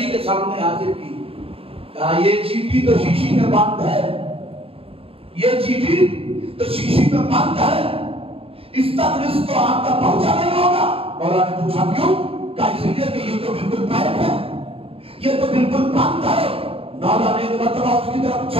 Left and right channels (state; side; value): late; left; 0.27 ms